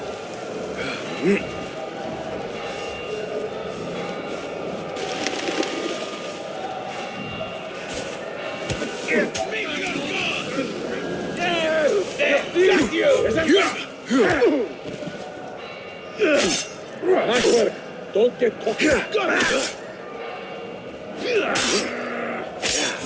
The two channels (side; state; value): both; identical; correlation 1.00